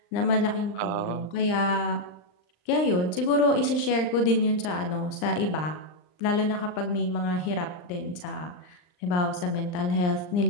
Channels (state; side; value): late; right; 39 ms